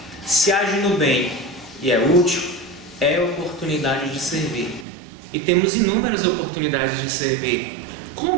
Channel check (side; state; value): left; drops out; at 4.9 s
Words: Se age no bem e é útil, é oportunidade de servir. E temos inúmeras oportunidades de servir.